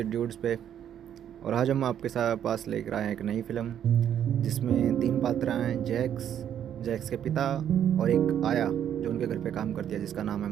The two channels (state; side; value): quieter; left; 9.7 dB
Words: पे। और आज हम आपके साथ पास लेकर आए हैं एक नई फिल्म जिसमें तीन पात्र हैं। जैक्स, जैक्स के पिता और एक आया जो उनके घर पे काम करती है जिसका नाम है